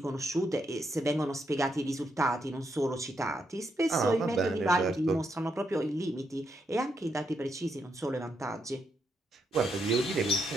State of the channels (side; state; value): both; normal; correlation 0.79